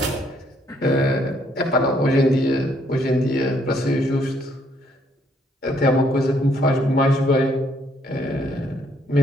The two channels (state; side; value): normal; both; correlation 0.69